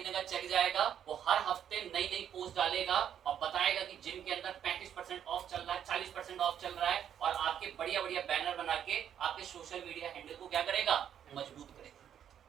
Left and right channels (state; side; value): quieter; left; 9.3 dB